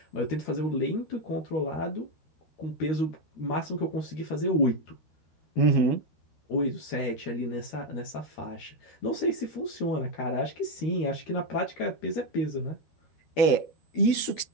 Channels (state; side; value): late; right; 13 ms